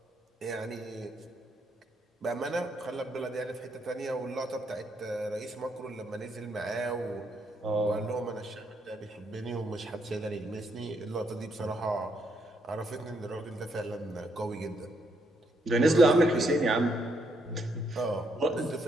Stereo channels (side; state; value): both; normal; correlation 0.75